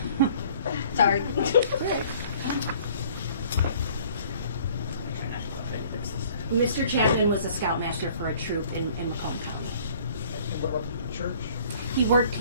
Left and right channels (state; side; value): inverted; both; correlation -0.54